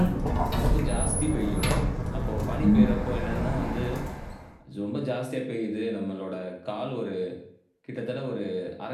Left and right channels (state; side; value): identical; both; correlation 1.00